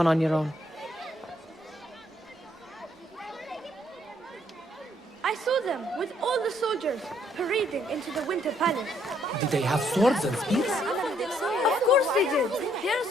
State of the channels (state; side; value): normal; both; correlation 0.69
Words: on your own. I saw them with all the soldiers parading into the Winter Palace. Did they have swords and spears? Of course they did. They are